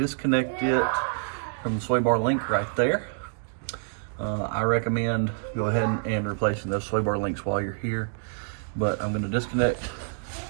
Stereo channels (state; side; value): silent; left; digital silence